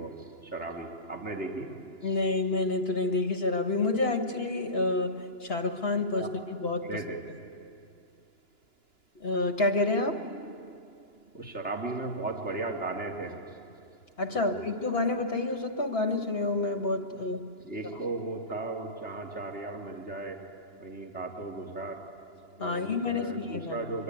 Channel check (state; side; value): late; right; 2.9 ms